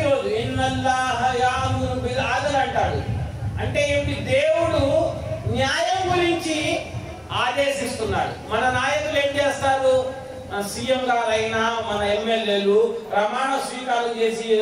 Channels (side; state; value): both; identical; correlation 1.00